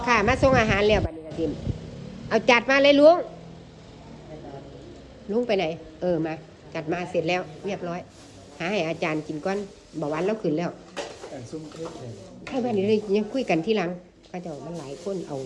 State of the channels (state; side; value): identical; both; correlation 1.00